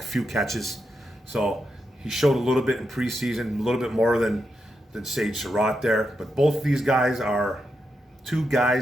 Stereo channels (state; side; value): normal; both; correlation 0.85